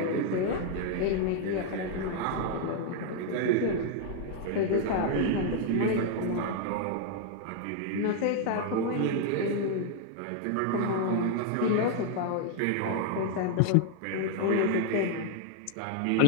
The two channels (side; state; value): both; different; correlation 0.00